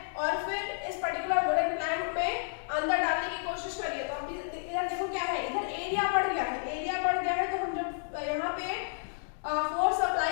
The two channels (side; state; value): right; silent; digital silence